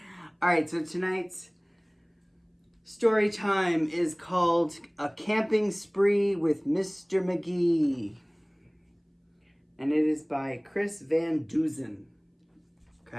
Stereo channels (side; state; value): both; identical; correlation 1.00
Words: All right, so tonight's story time is called A Camping Spree with Mr. Magee. And it is by Chris Van Duzen.